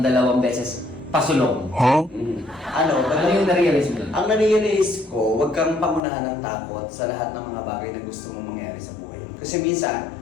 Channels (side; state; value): right; drops out; at 6.0 s